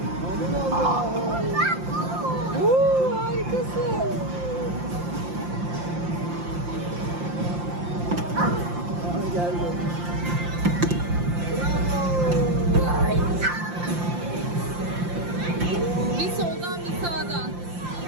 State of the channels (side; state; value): left; late; 5.7 ms